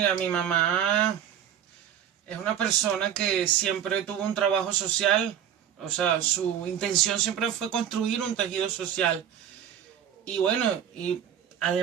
mi mamá es una persona que siempre tuvo un trabajo social, o sea, su intención siempre fue construir un tejido social. Y bueno, y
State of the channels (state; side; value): quieter; left; 9.5 dB